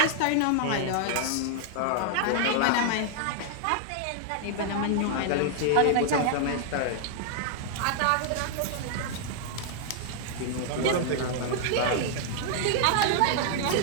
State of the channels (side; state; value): both; different; correlation -0.01